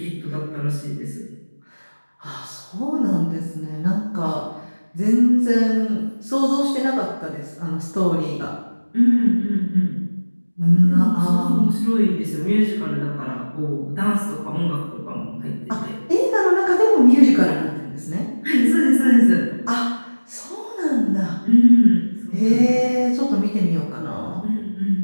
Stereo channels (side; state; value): both; inverted; correlation -1.00